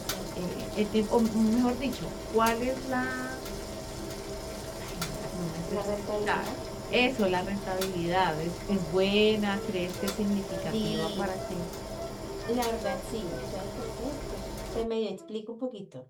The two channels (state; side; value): identical; both; correlation 1.00